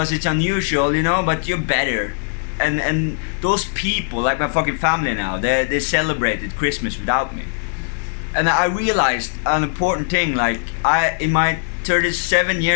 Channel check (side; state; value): right; silent; digital silence